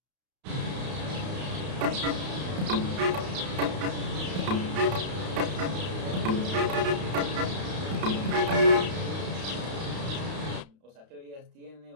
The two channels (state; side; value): late; left; 32 ms